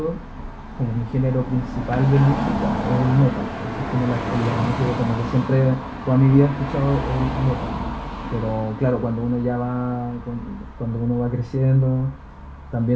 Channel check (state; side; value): identical; both; correlation 1.00